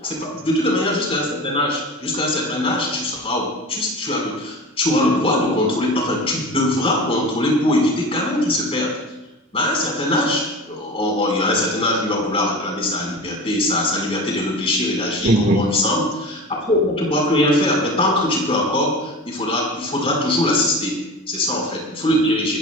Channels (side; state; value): both; normal; correlation 0.32